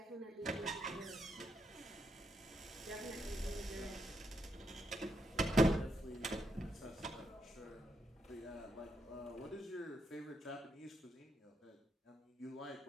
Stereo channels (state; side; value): normal; both; correlation 0.80